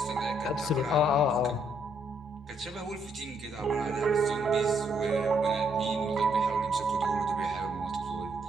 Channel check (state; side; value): normal; both; correlation 0.72